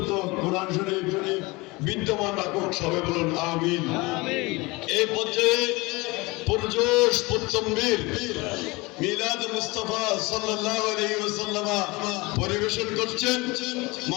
কোরআন শরীফ বিদ্যমান রাখুক। সবাই বলুন আমিন। এই পর্যায়ে পুরজোশ পুত্তম্বীর মিলাদ মুস্তাফা সাল্লাল্লাহু আলাইহি ওয়াসাল্লাম পরিবেশন করছেন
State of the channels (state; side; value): quieter; right; 23.9 dB